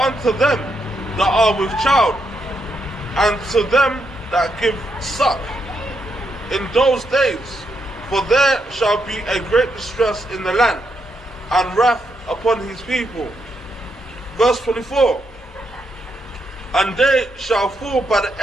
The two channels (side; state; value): both; normal; correlation 0.80